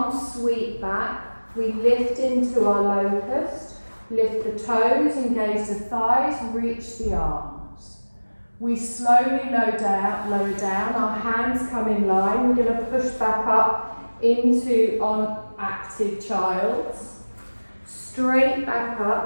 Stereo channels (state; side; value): inverted; both; correlation -1.00